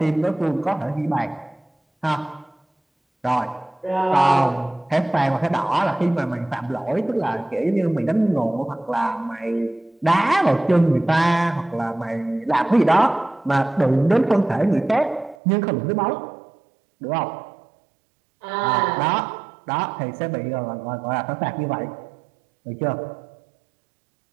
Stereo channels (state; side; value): drops out; left; at 15.4 s